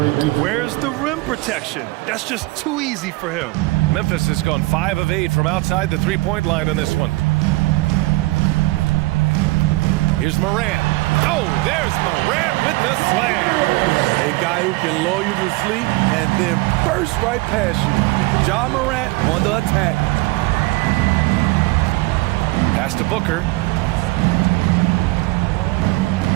Where's the rim protection? That's just too easy for him. Memphis has gone 5 of 8 from outside the three-point line on this one. Here's Morant. Oh, there's Morant with the slam. A guy who can lull you to sleep and then burst right past you. Ja Morant on the attack. Pass to Booker.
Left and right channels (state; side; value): quieter; left; 22.2 dB